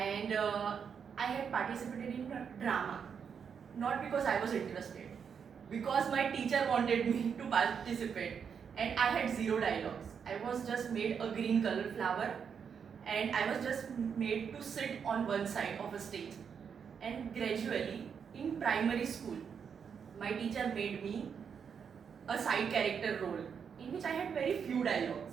I had participated in a drama, not because I was interested, because my teacher wanted me to participate, and I had zero dialogues. I was just made a green color flower, and I was just made to sit on one side of a stage. And gradually, in primary school, my teacher made me a side character role in which I had very few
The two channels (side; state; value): left; quieter; 6.9 dB